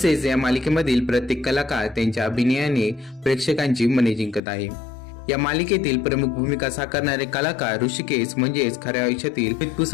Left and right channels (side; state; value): right; drops out; at 4.4 s